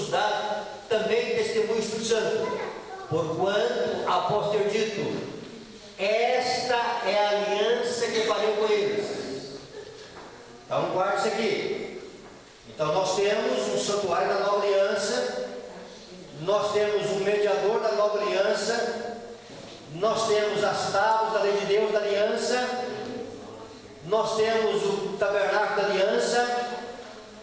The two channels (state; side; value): identical; both; correlation 1.00